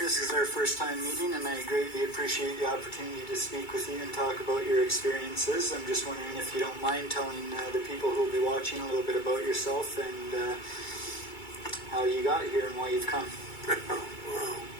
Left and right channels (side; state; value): right; late; 2.3 ms